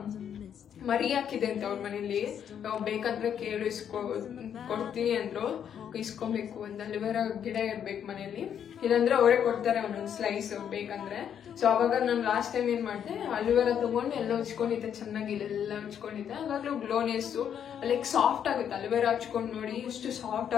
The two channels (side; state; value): right; quieter; 8.7 dB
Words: ಮರಿ ಹಾಕಿದೆ ಅಂತ ಅವ್ರ ಮನೇಲಿ, ಬೇಕಂದ್ರೆ ಕೇಳು ಕೊಡ್ತೀನಿ ಅಂದ್ರು. ಇಸ್ಕೊಬೇಕು, ಒಂದು ಅಲೋವೆರಾ ಗಿಡ ಇರ್ಬೇಕು ಮನೇಲಿ, ಇಲ್ಲಾಂದ್ರೆ ಅವರೇ ಕೊಡ್ತಾರೆ ಒಂದೊಂದು ಸ್ಲೈಸ್ ಬೇಕಂದ್ರೆ. ಸೊ ಅವಾಗ ನಾನು ಲಾಸ್ಟ್ ಟೈಮ್ ಏನ್ ಮಾಡಿದೆ, ಅಲೋವೆರಾ ತಗೊಂಡು ಎಲ್ಲ ಹಚ್ಕೊಂಡಿದ್ದೆ, ಚೆನ್ನಾಗಿ ಇಲ್ಲೆಲ್ಲ ಹಚ್ಕೊಂಡಿದ್ದೆ. ಅವಾಗ್ಲೂ ಗ್ಲೋನೆಸ್ಸು ಲೈಕ್ ಸಾಫ್ಟ್ ಆಗುತ್ತೆ. ಅಲೋವೆರಾ ಹಚ್ಕೊಂಡು ನೋಡಿ ಎಷ್ಟು ಸಾಫ್ಟ್